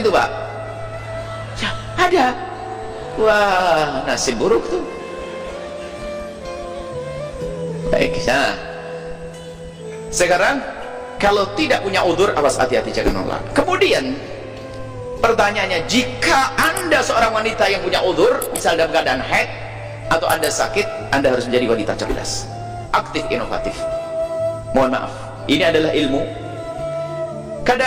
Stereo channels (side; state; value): both; identical; correlation 1.00